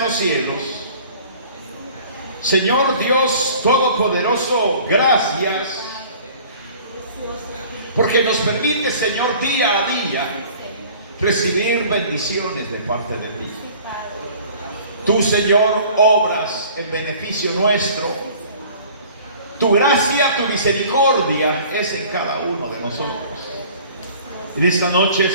los cielos, Señor Dios Todopoderoso, gracias porque nos permite, Señor, día a día recibir bendiciones de parte de ti. Tú, Señor, obras en beneficio nuestro. Tu gracia, tu misericordia es en cada uno de nosotros. En esta noche,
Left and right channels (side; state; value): both; inverted; correlation -0.48